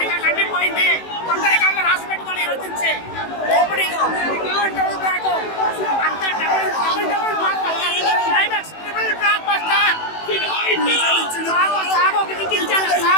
కండిపోయింది. కొత్త రికార్డులు రాసి పెట్టుకొని రచించే ఓపెనింగ్ అంతా double climax triple block buster. Sago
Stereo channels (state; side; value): late; right; 18 ms